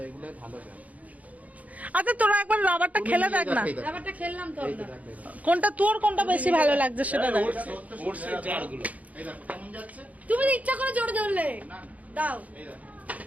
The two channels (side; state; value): left; late; 0.072 ms